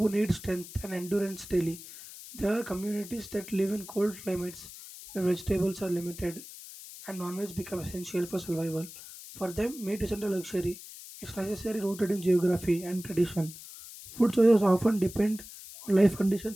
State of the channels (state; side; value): noise; left; hiss, 15 dB below the sound